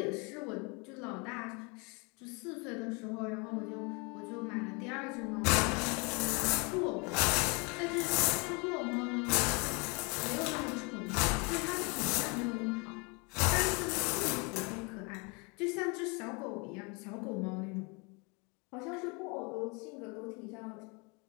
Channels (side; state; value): right; quieter; 30.8 dB